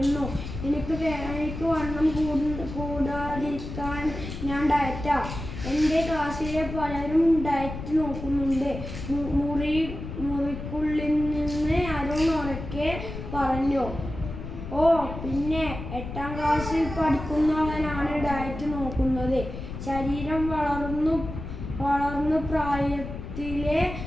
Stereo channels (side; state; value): left; noise; rumble, 8 dB below the sound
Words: എനിക്ക് വണ്ണം കൂടാതിരിക്കാൻ ഞാൻ ഡയറ്റാ. എൻ്റെ ക്ലാസ്സിലെ പലരും ഡയറ്റ് നോക്കുന്നുണ്ട്. മുറിക്കുള്ളിൽ നിന്ന് അരുൺ ഉറക്കെ പറഞ്ഞു. ഓ പിന്നെ 8ാം ക്ലാസ്സിൽ പഠിക്കുന്നവനാണ് ഡയറ്റ് നോക്കുന്നത്. ശരീരം വളർന്നു പ്രായത്തിലെ